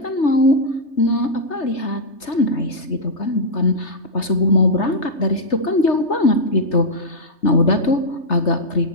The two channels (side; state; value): right; late; 3.3 ms